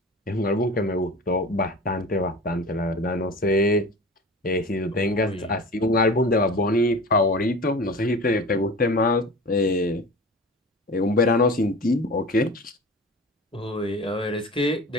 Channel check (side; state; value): both; normal; correlation 0.36